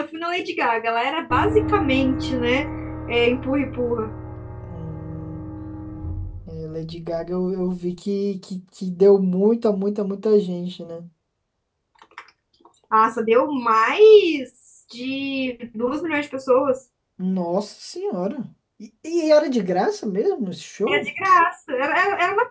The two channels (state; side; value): identical; both; correlation 1.00